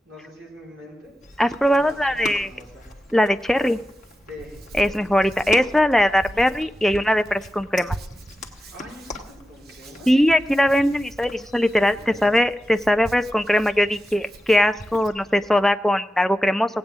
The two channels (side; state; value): both; normal; correlation 0.92